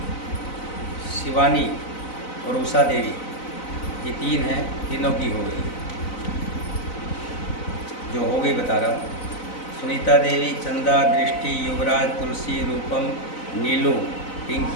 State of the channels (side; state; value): right; late; 4.0 ms